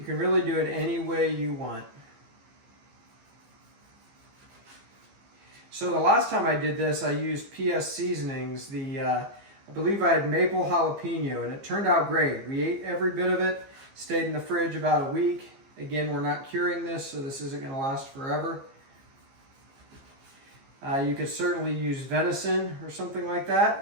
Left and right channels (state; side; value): late; left; 15 ms